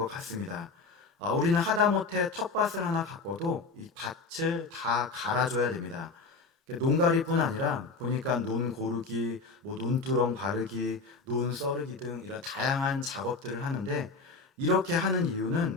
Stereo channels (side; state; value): right; quieter; 4.0 dB